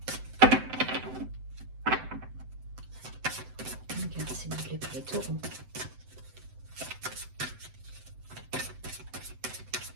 Une carte, s'il vous plaît, pour les taureaux.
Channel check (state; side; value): late; left; 7.8 ms